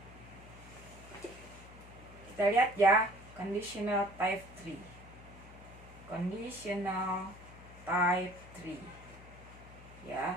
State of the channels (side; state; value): left; noise; hum, 18 dB below the sound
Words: kita lihat ya, conditional type 3. Conditional type 3